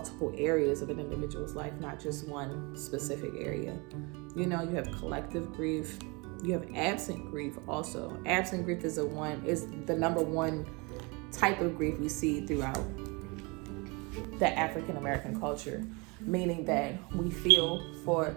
areas of an individual's life, not just one specific area. You have collective grief. You have absent grief also. Absent grief is the number one type of grief we see throughout the African American culture, meaning that we feel for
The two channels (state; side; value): quieter; left; 28.5 dB